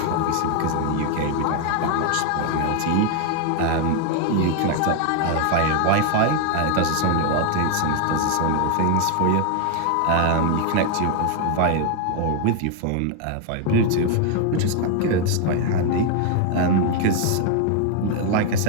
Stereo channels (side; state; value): both; different; correlation 0.01